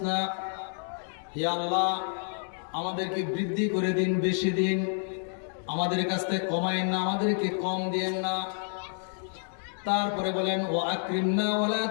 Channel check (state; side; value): silent; right; 58 dB below the other